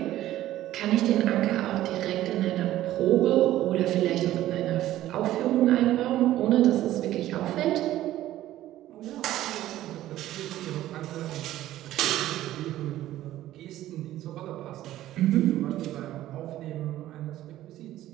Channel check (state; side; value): quieter; left; 14.1 dB